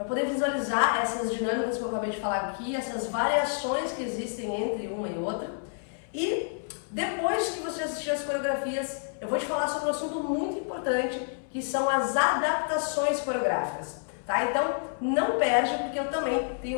poder visualizar essas dinâmicas que eu acabei de falar aqui, essas variações que existem entre uma e outra. E depois que você assistir as coreografias, eu vou te falar sobre um assunto muito importante, que são as adaptações coreográficas, tá? Então não perde, porque eu também tenho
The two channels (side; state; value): right; silent; 59 dB below the other